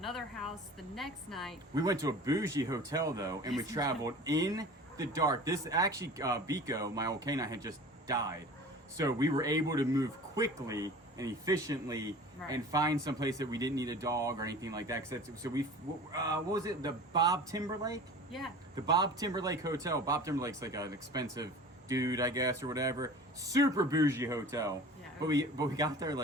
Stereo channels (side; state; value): both; normal; correlation 0.40